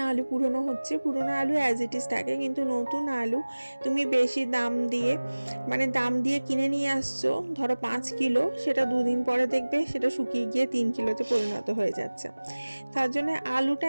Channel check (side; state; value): both; inverted; correlation -1.00